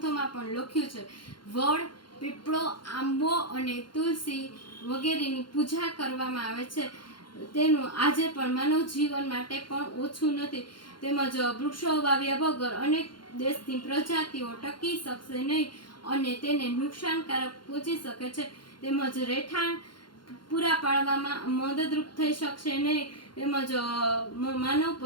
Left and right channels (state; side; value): late; right; 0.72 ms